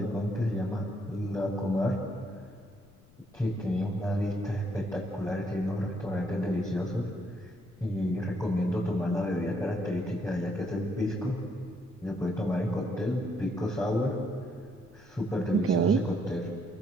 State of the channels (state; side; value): noise; left; rumble, 26 dB below the sound